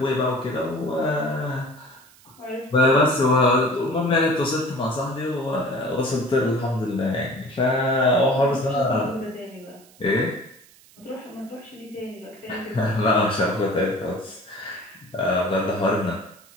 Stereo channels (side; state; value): right; noise; hiss, 26 dB below the sound